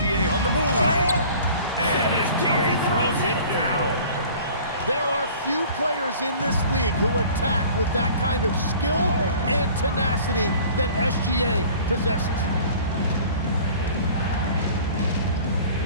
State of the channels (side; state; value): both; inverted; correlation -0.46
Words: on the move. And SGA throws it down. There are few players in this league who attack with that kind of skill and tenacity that SGA possesses.